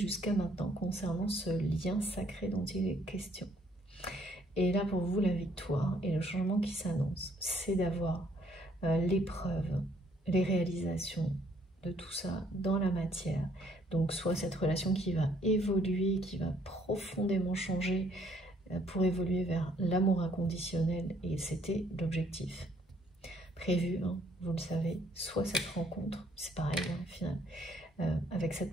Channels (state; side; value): normal; both; correlation 0.66